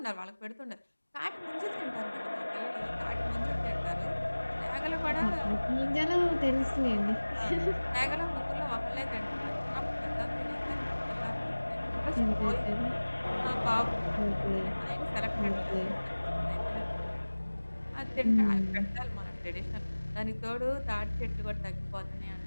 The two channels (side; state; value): both; inverted; correlation -1.00